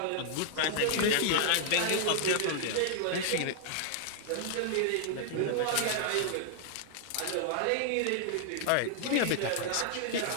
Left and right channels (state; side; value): different; both; correlation 0.00